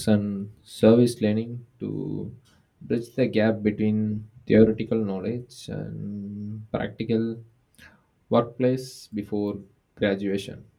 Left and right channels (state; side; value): identical; both; correlation 1.00